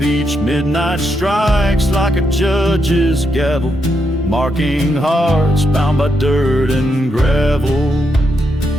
Each midnight strikes like a judge's gavel, marking hearts bound by dirt and gravel.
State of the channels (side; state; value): both; normal; correlation 0.81